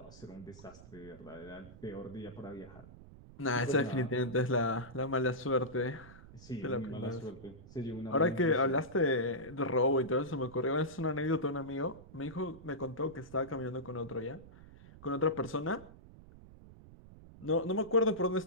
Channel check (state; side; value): noise; right; rumble, 19 dB below the sound